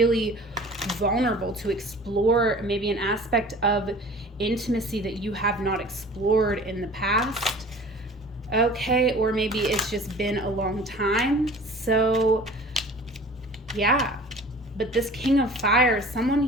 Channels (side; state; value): both; normal; correlation 0.44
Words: vulnerable to explore maybe an aspect of intimacy that you have not explored in the past. Okay, or maybe it's just been a long time. So yeah, but this King of Fire, someone